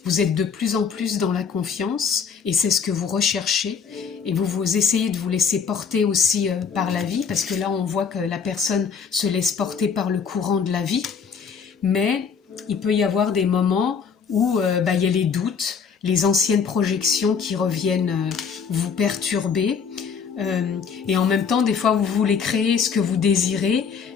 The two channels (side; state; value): right; quieter; 6.3 dB